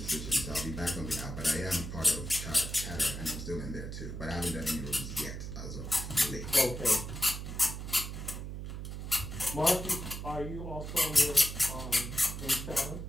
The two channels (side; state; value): right; noise; hum, 7 dB below the sound